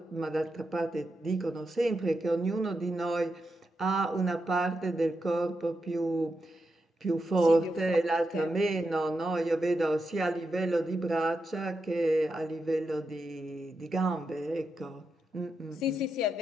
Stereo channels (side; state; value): both; normal; correlation 0.86